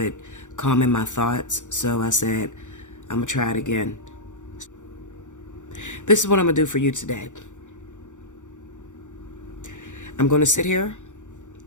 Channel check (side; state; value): right; late; 0.85 ms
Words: calming my thoughts. So I said, I'm going to try it again. This is what I'm going to do for you today. I'm going to sit here,